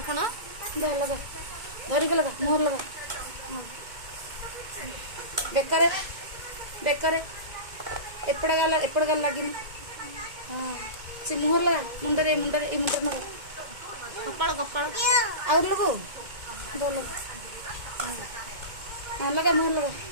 लगा धरी को लगा मोहर लगा बेकार एपड़ गाल लगी हाँ से मुहर लगा मुंडरे मुंडरे ये मुंडर लगा कपाल कपाल और लगो दो लगा हाँ लगा मुहर लगा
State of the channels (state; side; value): late; left; 2.2 ms